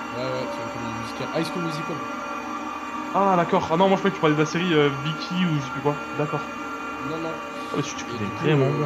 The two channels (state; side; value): identical; both; correlation 1.00